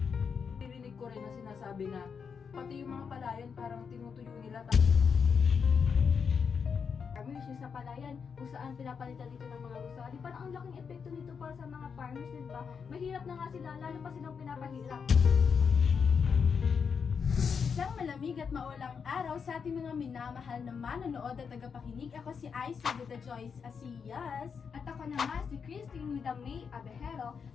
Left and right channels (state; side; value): quieter; right; 6.2 dB